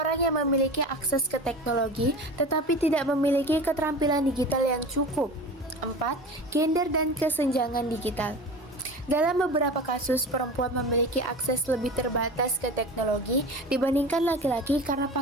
yang memiliki akses ke teknologi, tetapi tidak memiliki keterampilan digital yang cukup. 4. Gender dan kesenjangan digital. Dalam beberapa kasus, perempuan memiliki akses lebih terbatas ke teknologi dibandingkan laki-laki karena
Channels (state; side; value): normal; both; correlation 0.33